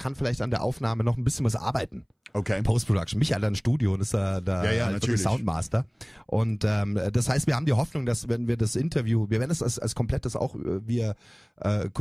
vielleicht an der Aufnahme noch ein bisschen was arbeiten. Okay. Post-Production. Micha hat ein Studio und ist da natürlich Soundmaster. Und das heißt, wir haben die Hoffnung, dass wenn wir das Interview, wir werden es als komplettes auch via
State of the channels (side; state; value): both; identical; correlation 1.00